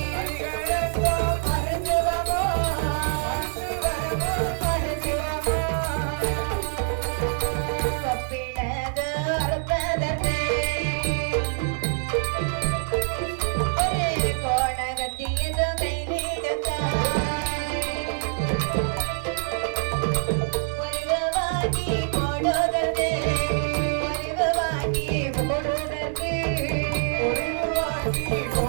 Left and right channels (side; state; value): left; silent; 61 dB below the other